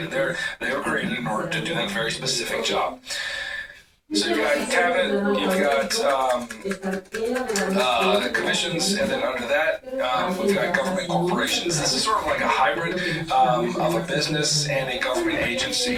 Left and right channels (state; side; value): identical; both; correlation 1.00